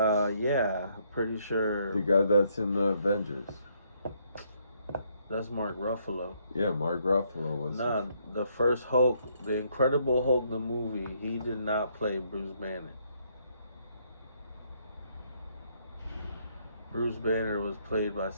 pretty sure. The guy that's in the Avengers. That's Mark Ruffalo. Yeah, Mark Ruffalo was. Nah, the first Hulk, the Incredible Hulk, the movie, he did not play Bruce Banner. Bruce Banner was played by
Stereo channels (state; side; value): inverted; both; correlation -0.71